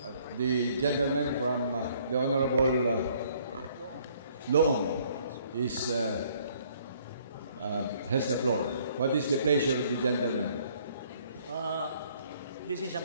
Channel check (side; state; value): both; inverted; correlation -0.62